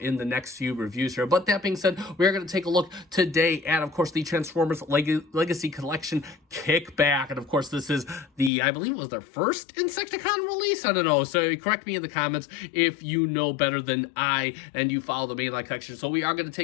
in the next few reviews here. But that being said, we're going to take a look today at, of course, the Transformers Legacy Collection Kickback. And of course, this is the, I believe it was their first Insecticon release. I don't know. So correct me in the comments if you know better than I and you follow the mainline collection. So we are going to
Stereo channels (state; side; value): drops out; right; at 8.5 s